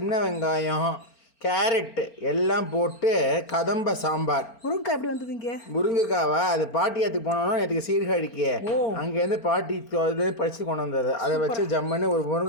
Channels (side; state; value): right; late; 4.4 ms